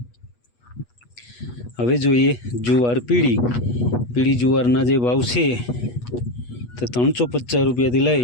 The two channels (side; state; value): right; late; 8.3 ms